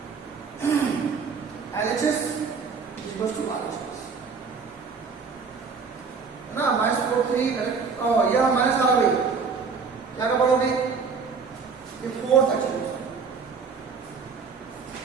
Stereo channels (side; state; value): left; quieter; 5.3 dB